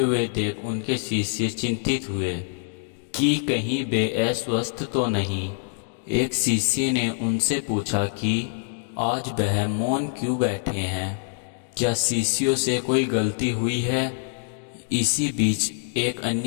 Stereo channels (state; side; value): silent; right; digital silence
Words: देख उनके शिष्य चिंतित हुए कि कहीं वे अस्वस्थ तो नहीं। एक शिष्य ने उनसे पूछा कि आज वह मौन क्यों बैठे हैं, क्या शिष्यों से कोई गलती हुई है। इसी बीच एक